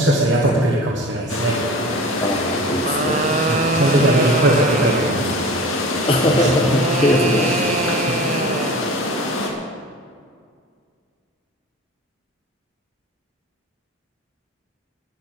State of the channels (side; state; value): both; normal; correlation 0.38